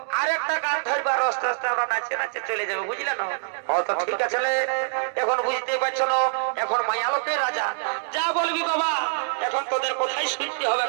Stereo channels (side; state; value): left; silent; digital silence